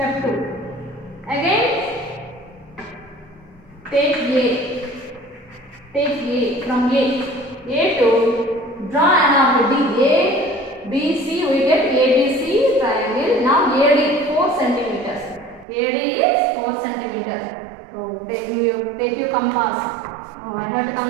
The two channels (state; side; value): drops out; left; at 15.7 s